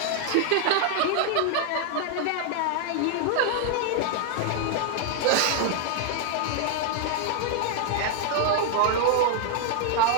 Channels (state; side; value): different; both; correlation 0.00